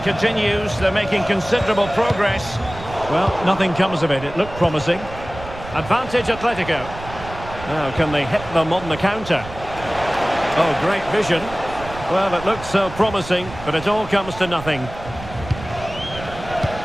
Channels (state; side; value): noise; right; rumble, 13 dB below the sound